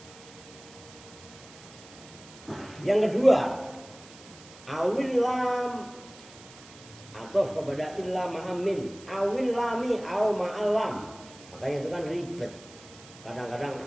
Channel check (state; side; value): noise; right; hiss, 20 dB below the sound